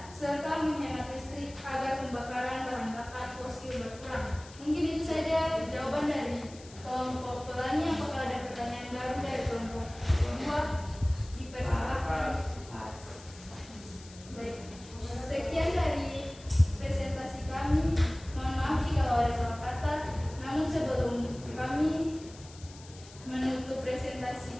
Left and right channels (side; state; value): left; noise; hiss, 20 dB below the sound